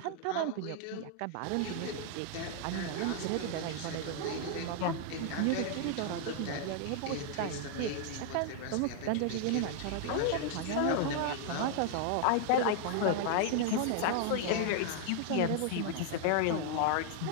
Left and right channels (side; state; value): both; different; correlation 0.00